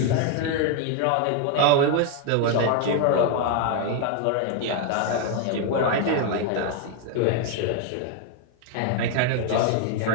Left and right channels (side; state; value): both; different; correlation 0.01